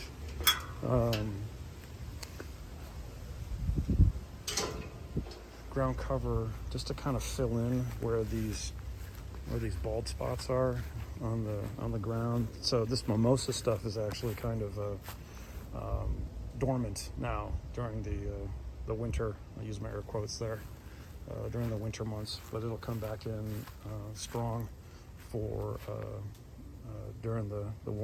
Ground cover just to kind of fill in where these bald spots are on the ground. So this mimosa stuff is actually kind of dormant now during the winter. I use my air quotes there. During the winter months, but it'll come back in strong for during the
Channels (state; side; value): identical; both; correlation 1.00